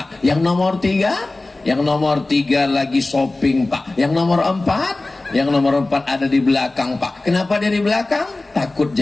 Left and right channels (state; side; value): quieter; right; 3.0 dB